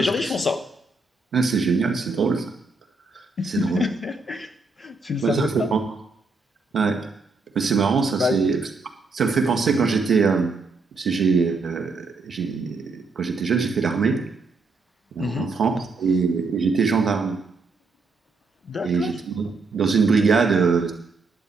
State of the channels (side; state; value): left; quieter; 3.8 dB